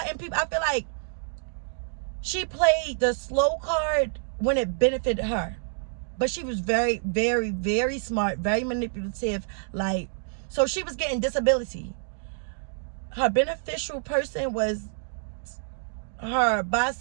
people, I feel like she played the slow card when it benefited her. But she was very, very, very smart, very manipulative. Like, so she was getting disability. Her beneficial person was her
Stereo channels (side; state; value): left; silent; digital silence